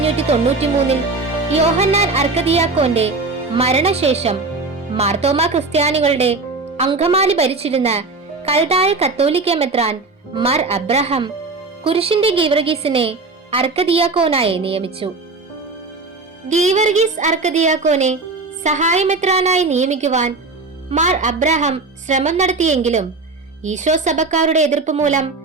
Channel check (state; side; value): quieter; left; 3.7 dB